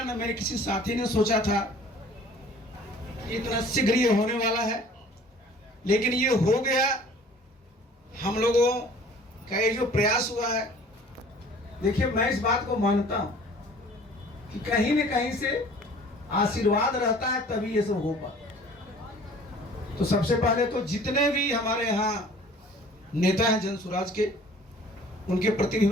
न मेरे किसी साथी ने सोचा था इतना शीघ्र ये होने वाला है, लेकिन ये हो गया। हम लोगों का ये जो प्रयास हुआ है, देखिए मैं इस बात को मानता हूं कि कहीं न कहीं से आशीर्वाद रहता है तभी ये सब हो पाता। तो सबसे पहले तो जितने भी हमारे यहाँ नेता हैं जनसुराज के, उनके प्रति भी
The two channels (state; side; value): normal; both; correlation 0.50